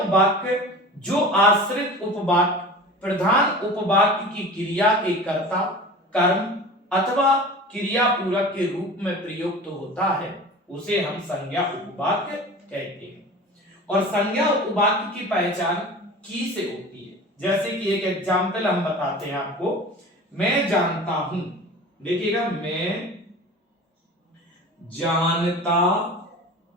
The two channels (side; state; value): both; normal; correlation 0.37